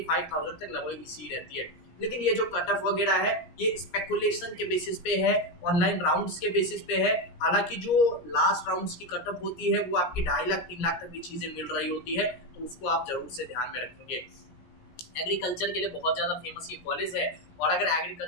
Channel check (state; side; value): late; right; 17 ms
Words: तक लगभग EC रहती है। लेकिन ये जो कट ऑफ वगैरह है ये स्पेकुलेशन के बेसिस पे है, ऑनलाइन राउंड्स के बेसिस पे है। हालांकि जो लास्ट राउंड्स की कट ऑफ होती है वो आपकी 2.5 लाख 3 लाख तक भी चीजें मिल रही होती है, तो उसको आप जरूर से ध्यान में रखेंगे। एग्रीकल्चर के लिए बहुत ज़्यादा फेमस ये कॉलेज है और अगर